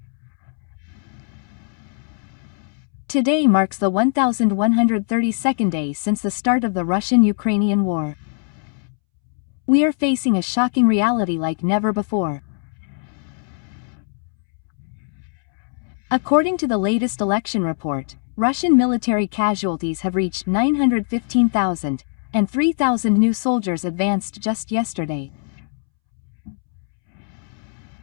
Today marks the 1132nd day since the start of the Russian-Ukrainian war. We are facing a shocking reality like never before. According to the latest election report, Russian military casualties have reached 915,000, and 3,000 new soldiers advanced just yesterday.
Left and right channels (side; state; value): right; silent; 64 dB below the other